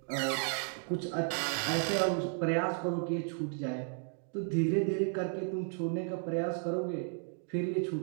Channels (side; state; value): left; silent; 55 dB below the other